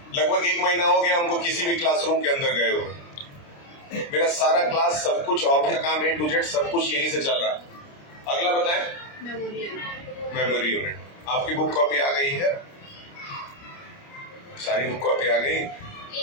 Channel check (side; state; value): right; late; 29 ms